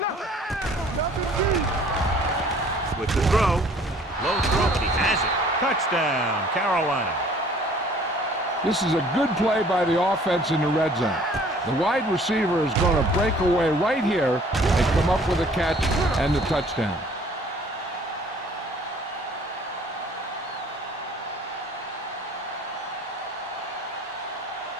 With the throw. Low throw, but he has it. Touchdown, Carolina. This is a good play by the offense in the red zone. The wide receiver is going to break away right here and come up with a catch and the touchdown.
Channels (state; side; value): normal; both; correlation 0.54